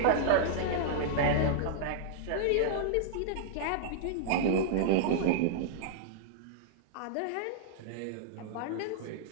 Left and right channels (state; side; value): different; both; correlation -0.02